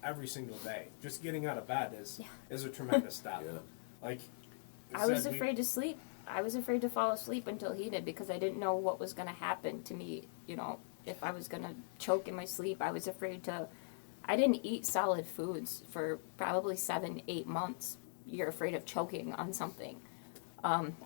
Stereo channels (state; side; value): silent; right; digital silence